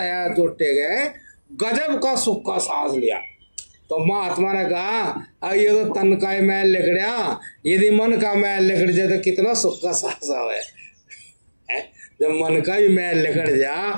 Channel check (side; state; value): both; inverted; correlation -1.00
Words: जोटे गए गजब का सुख का सांस लिया। तो महात्मा ने कहा, अब ये तो तन का मैल लिकड़ा, यदि मन का मैल लिकड़ जाए तो कितना सुख का सांस आवे। जब मन का भी मैल लिकड़ जा